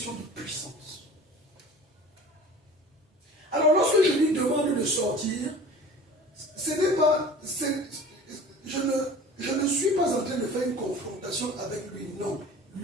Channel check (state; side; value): normal; both; correlation 0.42